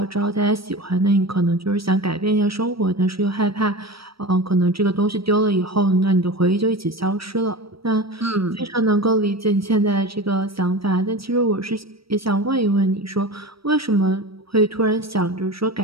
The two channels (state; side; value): late; left; 0.75 ms